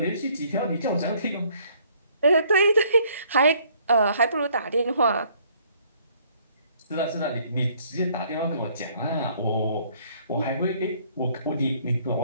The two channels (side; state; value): both; inverted; correlation -0.62